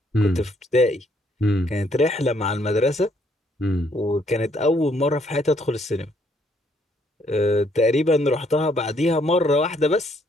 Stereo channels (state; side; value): normal; both; correlation 0.68